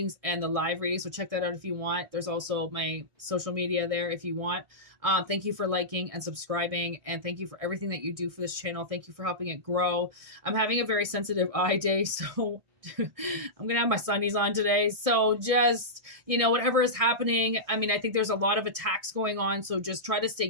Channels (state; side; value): late; left; 1.6 ms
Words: and the live readings, so check that out if you want. There's also my social media there if you want. Thank you for liking and subscribing, and thank you for everything that you do for this channel. Thank you for helping it grow. I'm having a very sensitive eye day, so I'm going to have my sunnies on today. So just, you know, whatever is happening, I mean, I think there's a lot of attacks going on, so just try to stay